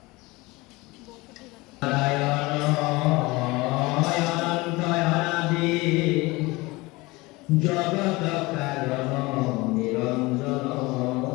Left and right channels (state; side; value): quieter; right; 22.6 dB